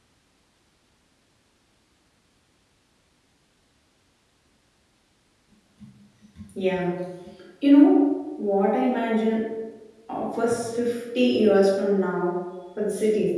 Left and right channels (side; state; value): both; identical; correlation 1.00